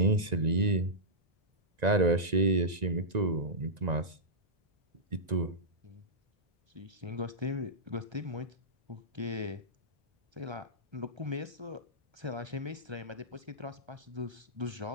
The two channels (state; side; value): late; left; 1.9 ms